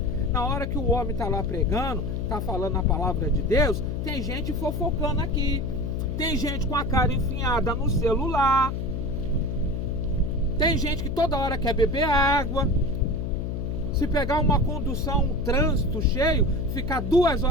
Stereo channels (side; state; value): left; noise; hum, 3 dB below the sound